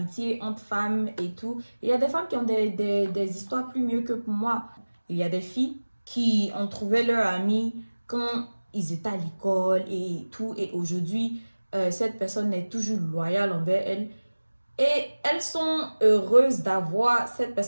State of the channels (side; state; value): both; inverted; correlation -1.00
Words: entre femmes et tout, il y a des femmes qui ont des histoires plus mieux que pour moi. Il y a des filles qui ont trouvé leur ami quand ils étaient à l'école et tout. Et aujourd'hui, cette personne est toujours loyale envers elle. Et elles sont heureuses d'avoir cette